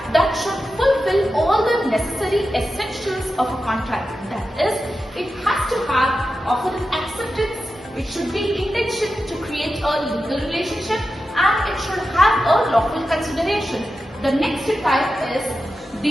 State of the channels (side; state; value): both; normal; correlation 0.91